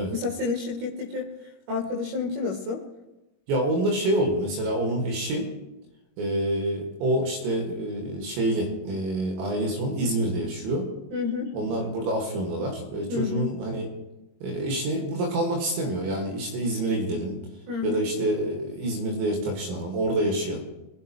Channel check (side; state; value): left; late; 22 ms